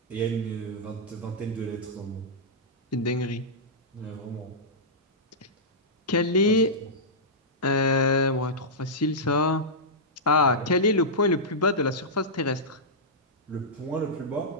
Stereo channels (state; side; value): normal; both; correlation -0.13